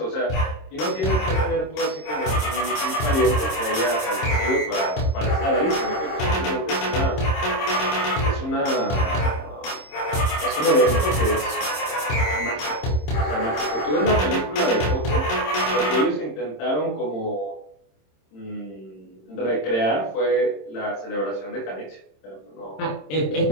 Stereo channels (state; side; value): late; right; 26 ms